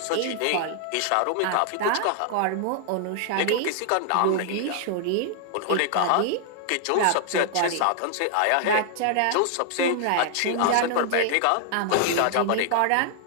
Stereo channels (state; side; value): different; both; correlation 0.00